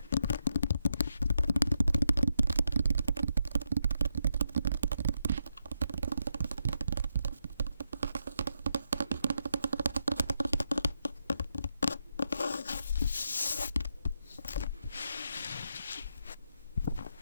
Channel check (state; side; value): inverted; both; correlation -0.82